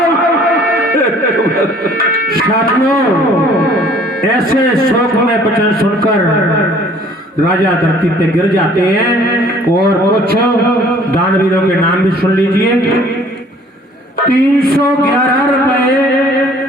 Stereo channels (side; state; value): both; normal; correlation 0.55